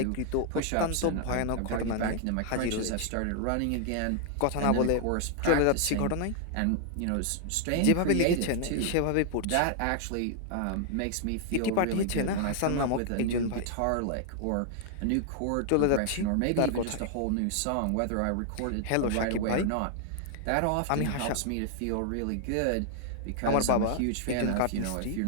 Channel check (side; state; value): both; different; correlation -0.01